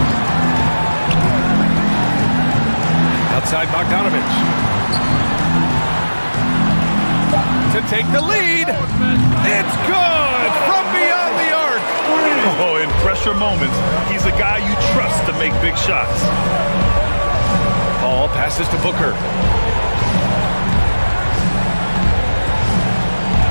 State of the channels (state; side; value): inverted; both; correlation -1.00